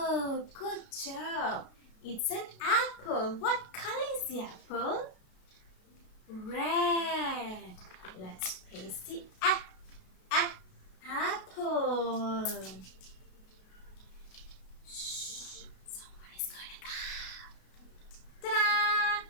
Good job. It's an apple. What color is the apple? Red. Let's paste the apple. Shh. Someone is going to come. Ta-da!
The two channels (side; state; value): right; late; 33 ms